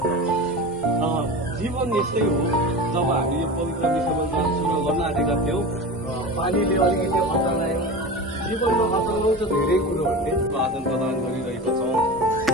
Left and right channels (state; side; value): normal; both; correlation 0.29